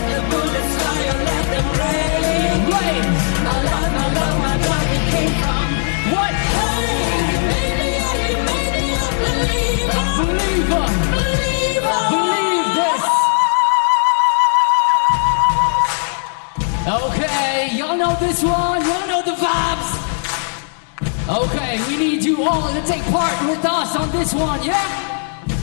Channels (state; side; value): silent; right; digital silence